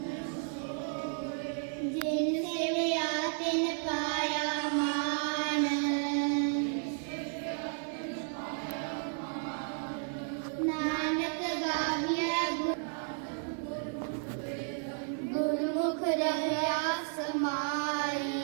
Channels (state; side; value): silent; left; 56 dB below the other